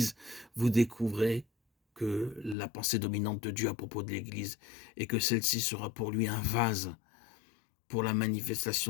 vous découvrez que la pensée dominante de Dieu à propos de l'Église et que celle-ci sera pour lui un vase pour la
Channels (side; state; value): right; drops out; at 2.6 s